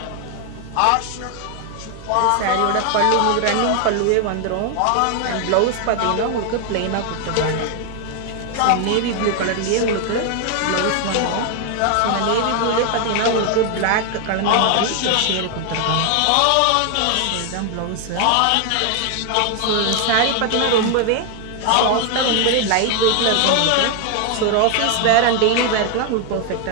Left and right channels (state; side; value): different; both; correlation 0.00